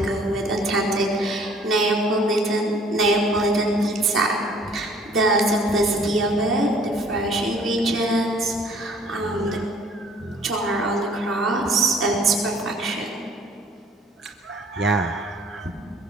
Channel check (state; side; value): normal; both; correlation 0.56